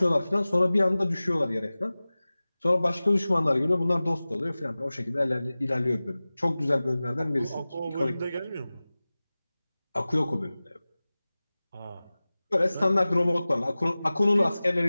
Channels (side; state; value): both; inverted; correlation -0.98